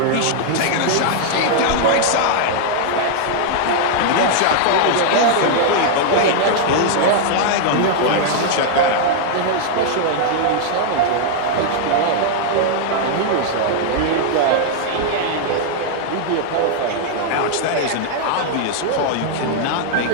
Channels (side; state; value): both; different; correlation -0.01